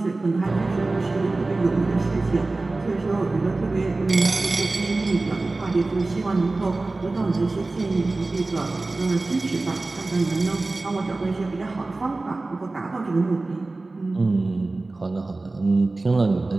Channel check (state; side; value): quieter; left; 3.2 dB